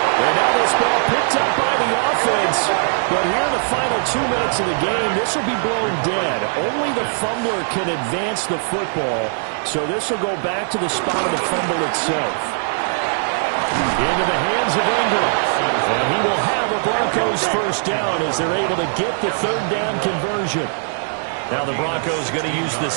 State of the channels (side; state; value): left; silent; digital silence